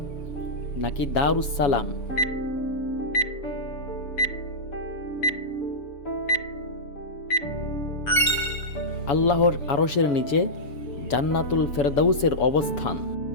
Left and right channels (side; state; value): right; late; 7.0 ms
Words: নাকি দারুস সালাম। আল্লাহর আরশের নিচে জান্নাতুল ফেরদাউসের অবস্থান।